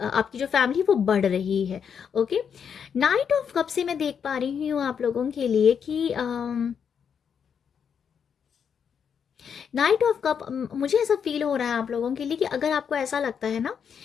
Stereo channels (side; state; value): right; quieter; 7.3 dB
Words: आपकी जो फैमिली वो बढ़ रही है, ओके। नाइट ऑफ कप से मैं देख पा रही हूँ आप लोगों के लिए कि नाइट ऑफ कप, मुझे ऐसा फील हो रहा है आप लोगों के लिए कि अगर आपको ऐसा लगता है ना